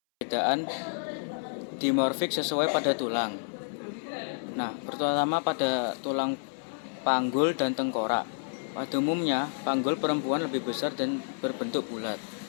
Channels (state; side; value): silent; right; 58 dB below the other